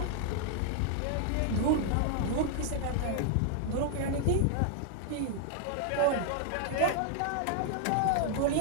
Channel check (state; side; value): different; both; correlation 0.00